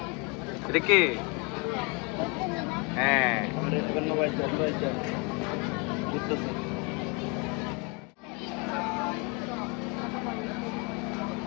এটা কে হ্যাঁ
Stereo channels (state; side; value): quieter; right; 31.6 dB